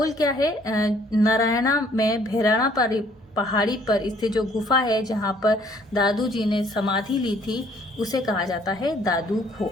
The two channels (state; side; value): normal; both; correlation 0.61